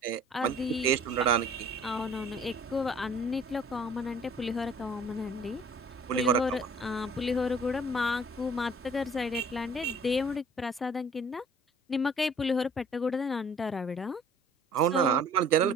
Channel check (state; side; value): normal; both; correlation 0.53